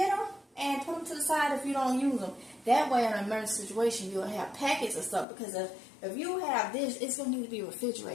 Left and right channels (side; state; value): right; drops out; at 5.2 s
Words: them and put them to the side if you don't use them. That way, in an emergency situation, you'll have packets of stuff. Because if you have this, it's going to need to be